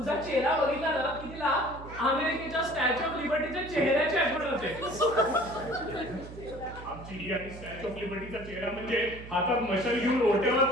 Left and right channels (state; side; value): noise; right; hum, 14 dB below the sound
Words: चेहरा बघितला ना की तिला अमेरिकेच्या स्टॅच्यू ऑफ लिबर्टीच्या चेहऱ्याची आठवण होते. आमची ही आणि स्टॅच्यू ऑफ लिबर्टीचा चेहरा म्हणजे हातात मशाल घेऊन ओट्यावर